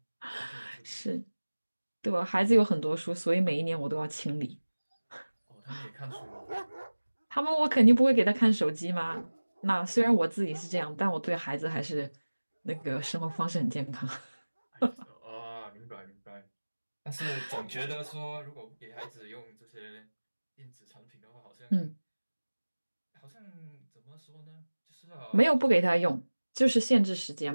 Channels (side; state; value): both; inverted; correlation -1.00